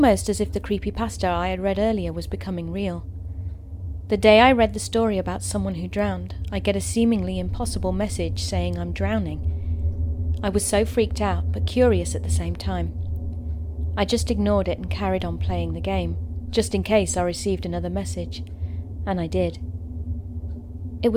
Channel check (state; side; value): identical; both; correlation 1.00